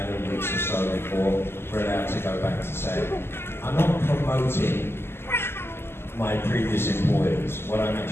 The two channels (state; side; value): late; right; 0.12 ms